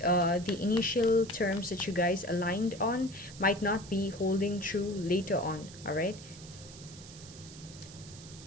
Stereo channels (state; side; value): noise; right; hiss, 17 dB below the sound